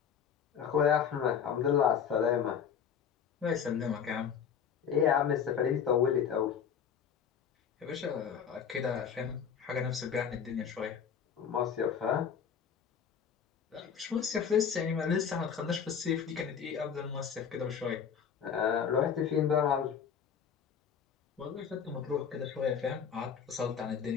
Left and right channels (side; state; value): right; quieter; 7.5 dB